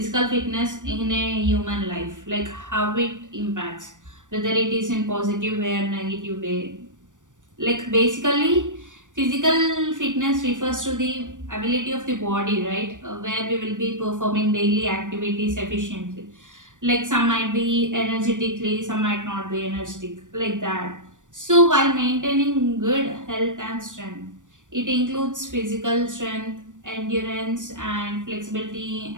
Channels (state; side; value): late; left; 0.87 ms